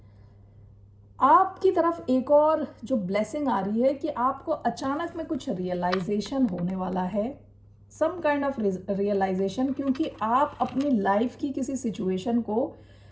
आपकी तरफ एक और जो ब्लेसिंग आ रही है कि आपको अचानक में कुछ रियलाइजेशन होने वाला है, सम काइंड ऑफ रियलाइजेशन, क्योंकि आप अपनी लाइफ की किसी सिचुएशन को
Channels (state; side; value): identical; both; correlation 1.00